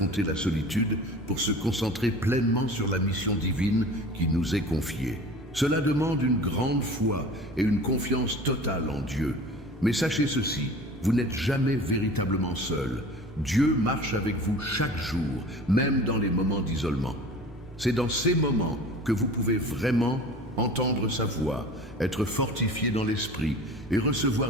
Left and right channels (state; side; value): normal; both; correlation 0.40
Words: la solitude pour se concentrer pleinement sur la mission divine qui nous est confiée. Cela demande une grande foi et une confiance totale en Dieu. Mais sachez ceci, vous n'êtes jamais véritablement seul. Dieu marche avec vous chaque jour, même dans les moments d'isolement. C'est dans ces moments que vous pouvez vraiment entendre sa voix, être fortifié dans l'esprit et